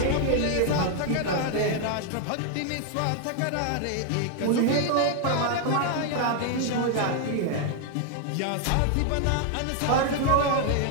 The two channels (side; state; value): both; different; correlation 0.00